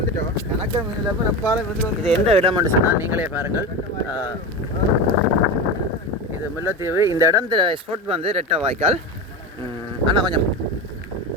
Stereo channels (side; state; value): both; normal; correlation 0.24